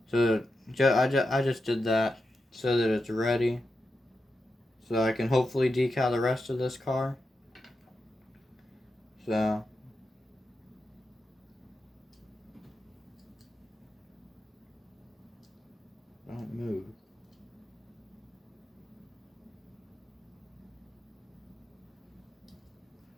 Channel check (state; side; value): normal; both; correlation 0.88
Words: So I just did that so that it's ready. So I can hopefully decal the rest of this car. So don't move.